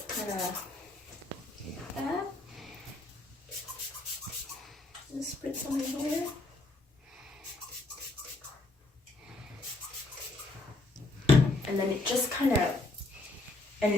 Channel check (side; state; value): right; quieter; 3.0 dB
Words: kind of that. Just spritz on my hair. And then it just kind of,